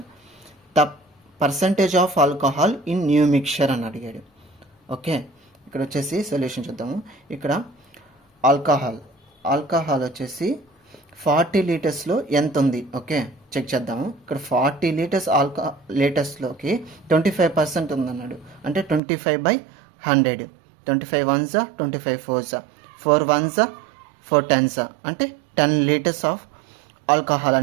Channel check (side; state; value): left; drops out; at 19.0 s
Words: the percentage of alcohol in new mixture అని అడిగాడు. ఓకే, ఇక్కడ వచ్చేసి సొల్యూషన్ చూద్దాము. ఇక్కడ ఆల్కహాల్ వచ్చేసి 40 లీటర్స్లో ఎంత ఉంది, ఓకే చెక్ చేద్దాము. ఇక్కడ 40 లీటర్స్లోకి 25% ఉందన్నాడు. అంటే 25/100. 25 1s 25 4s 4 1s 4 10s అంటే 10 లీటర్స్ ఆఫ్ ఆల్కహాల్